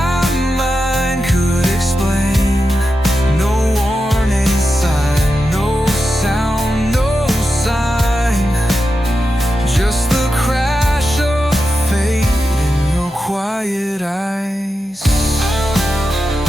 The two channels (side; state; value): both; normal; correlation 0.90